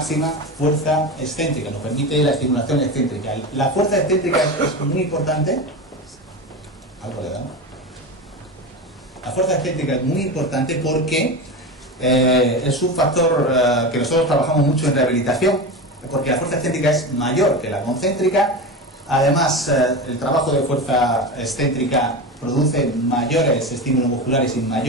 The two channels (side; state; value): both; normal; correlation 0.23